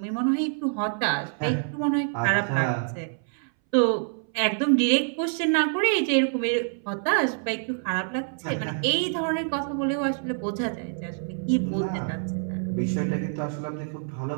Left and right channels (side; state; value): left; silent; 61 dB below the other